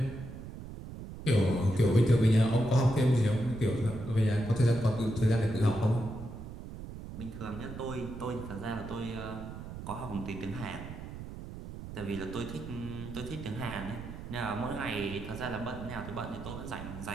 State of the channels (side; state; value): right; noise; rumble, 10 dB below the sound